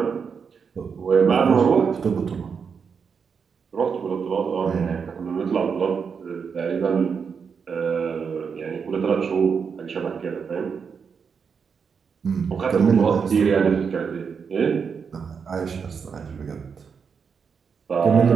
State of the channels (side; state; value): left; quieter; 6.2 dB